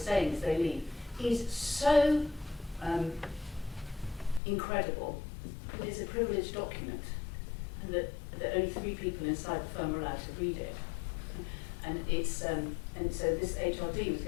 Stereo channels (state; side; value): drops out; right; at 4.4 s